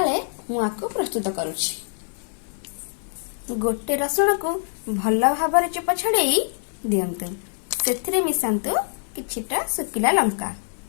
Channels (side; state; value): right; silent; digital silence